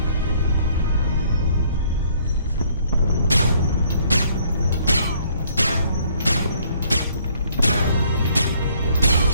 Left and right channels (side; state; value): both; inverted; correlation -0.62